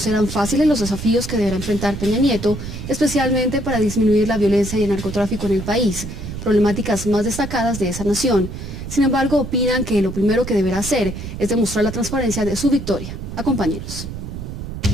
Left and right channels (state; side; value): noise; right; rumble, 8 dB below the sound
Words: fáciles los desafíos que deberá enfrentar Peña Nieto, especialmente para disminuir la violencia y el narcotráfico en el país, problemáticas más destacadas de esa nación. Sin embargo, opinan que lo primero que deberá hacer es demostrar la transparencia de su victoria. Acompáñenos.